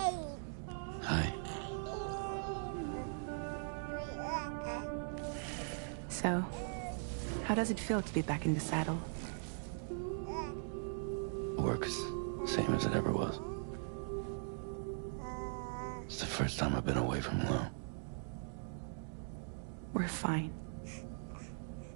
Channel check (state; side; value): silent; left; digital silence